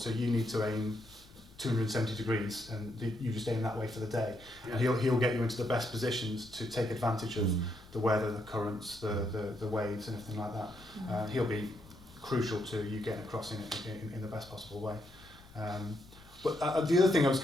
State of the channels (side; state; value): left; noise; rumble, 23 dB below the sound